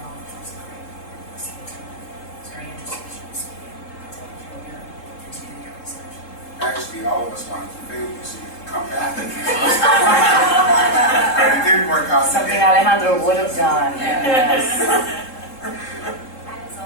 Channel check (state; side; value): late; right; 3.7 ms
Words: was great. Listening to it. It's very interesting as you were speaking. I think it's really good. Continue your research. Actually, all of us wanted to fail you so you could come back. But it didn't work out. Something Alejandro would have done. Yes. I was